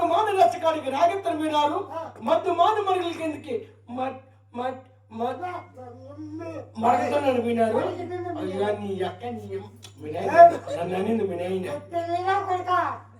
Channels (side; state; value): both; identical; correlation 1.00